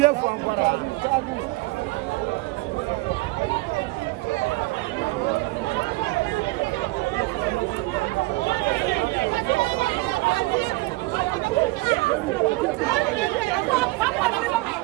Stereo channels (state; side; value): quieter; left; 21.9 dB